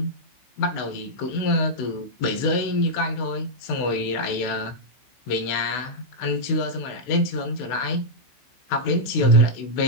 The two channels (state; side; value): late; right; 16 ms